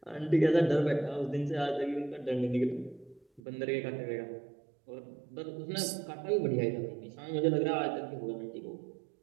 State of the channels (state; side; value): drops out; left; at 3.4 s